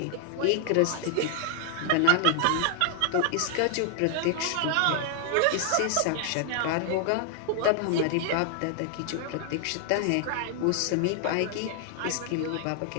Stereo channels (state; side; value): different; both; correlation 0.00